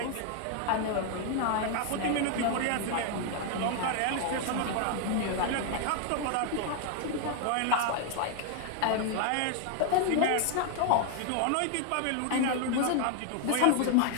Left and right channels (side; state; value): both; different; correlation 0.00